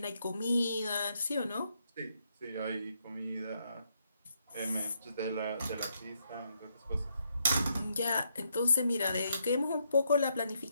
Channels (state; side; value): inverted; both; correlation -0.76